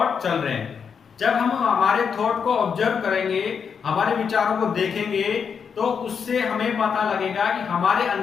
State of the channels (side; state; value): right; quieter; 6.6 dB